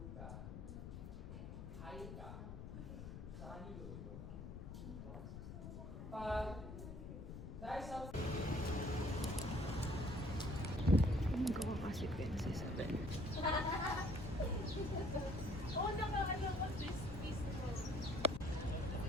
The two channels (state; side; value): noise; left; rumble, 9 dB below the sound